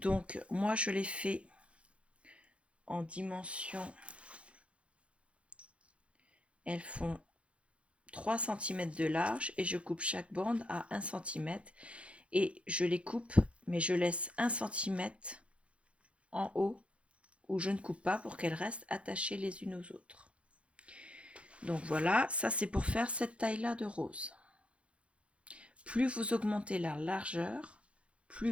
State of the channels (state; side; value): late; left; 0.061 ms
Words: moi je l'ai fait en dimension, elles font 3 cm de large et je coupe chaque bande à 1 cm et je les coupe, mais je laisse 1 cm en haut où je ne coupe pas pour qu'elles restent attachées les unes aux autres. Donc voilà, ça c'est pour faire cette taille là de rose. Plus vous augmentez la largeur, plus